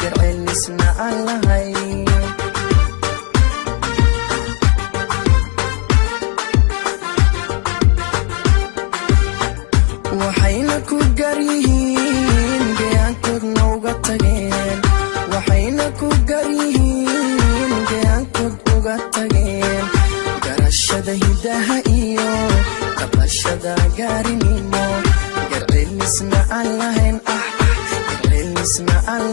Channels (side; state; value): right; quieter; 30.5 dB